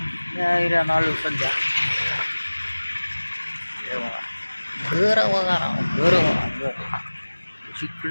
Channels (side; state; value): both; inverted; correlation -1.00